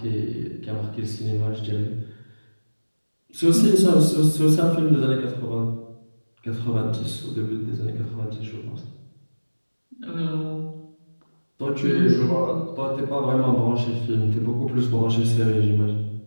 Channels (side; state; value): both; inverted; correlation -1.00